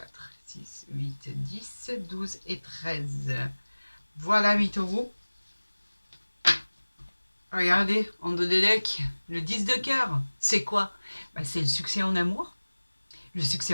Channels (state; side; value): inverted; both; correlation -1.00